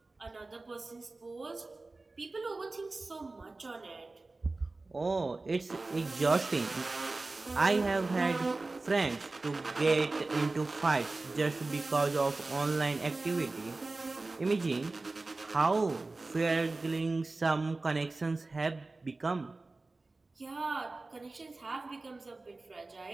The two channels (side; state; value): left; quieter; 3.3 dB